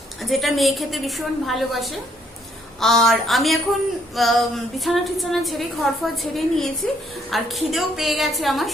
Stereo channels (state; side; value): normal; both; correlation 0.68